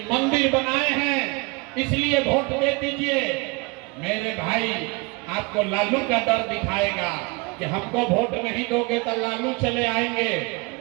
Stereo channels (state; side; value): quieter; left; 28.0 dB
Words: मंदिर बनाए हैं इसलिए वोट दे दीजिए। मेरे भाई, आपको लालू का डर दिखाएगा कि हमको वोट नहीं दोगे तो लालू चले आएंगे।